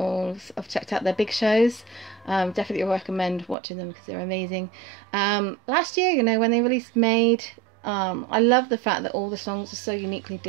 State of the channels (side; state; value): left; drops out; at 3.6 s